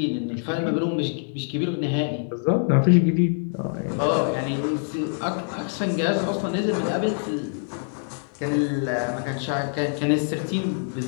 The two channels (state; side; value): silent; right; digital silence